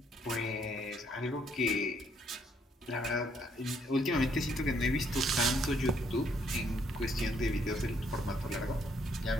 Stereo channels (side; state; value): both; normal; correlation 0.70